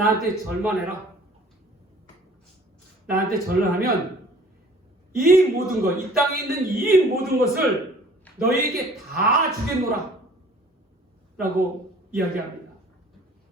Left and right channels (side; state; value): both; normal; correlation 0.51